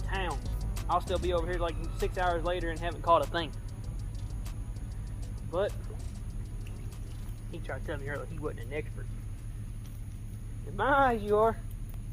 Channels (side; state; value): both; identical; correlation 1.00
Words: I'll still be over here like 6 hours later and haven't caught a thing. But he tried to tell me earlier he wasn't an expert. In my eyes, you are.